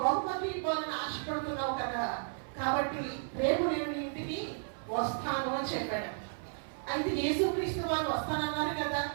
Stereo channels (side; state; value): left; silent; 55 dB below the other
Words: బహుమతి ఇవ్వాలని ఆశపడుతున్నావు కదా, కాబట్టి రేపు నేను నీ ఇంటికి వస్తాను అని చెప్పాడు. అయితే యేసుక్రీస్తు వారు వస్తానన్నారు కదా